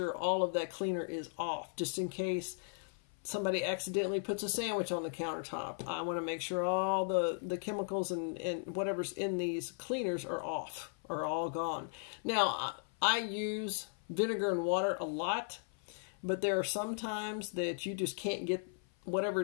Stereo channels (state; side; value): silent; right; 53 dB below the other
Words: all of that cleaner is off, just in case somebody accidentally puts a sandwich on the countertop. I want to make sure all the chemicals and whatever's in these cleaners are off, are all gone. Now, I use vinegar and water a lot, but there are some times that you just can't get whatever